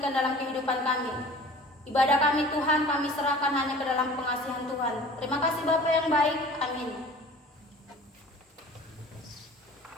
dalam kehidupan kami. Ibadah kami Tuhan, kami serahkan hanya ke dalam pengasihan Tuhan. Terima kasih Bapak yang baik. Amin.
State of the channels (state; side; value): normal; both; correlation 0.44